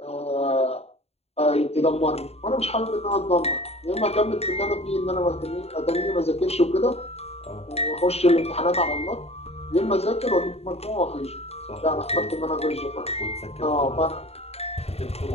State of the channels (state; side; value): late; right; 0.30 ms